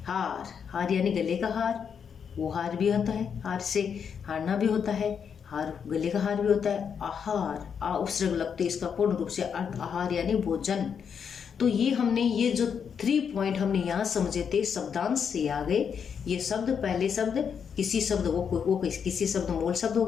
हार, हार यानी गले का हार, वो हार भी होता है, हार से हारना भी होता है, हार गले का हार भी होता है। आहार, आ उपसर्ग लगते, इसका पूर्ण रूप से अर्थ आहार यानी भोजन। तो ये हमने ये जो 3 पॉइंट हमने यहाँ समझे थे, शब्दांश से आ गए। ये शब्द, पहले शब्द किसी शब्द वो किसी शब्द मूल शब्द हो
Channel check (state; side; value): quieter; right; 7.1 dB